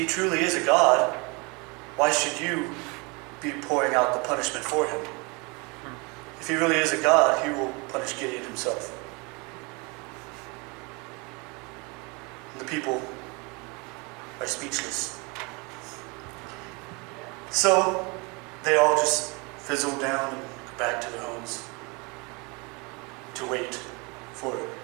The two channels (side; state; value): left; quieter; 29.0 dB